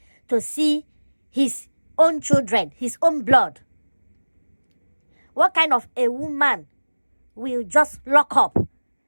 to see his own children, his own blood. What kind of a woman will just lock up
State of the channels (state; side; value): inverted; both; correlation -1.00